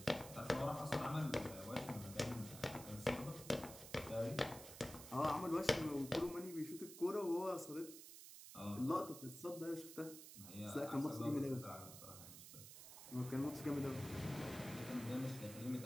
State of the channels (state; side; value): noise; right; hiss, 13 dB below the sound